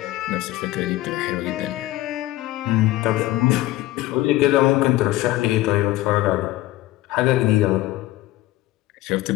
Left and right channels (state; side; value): quieter; right; 16.6 dB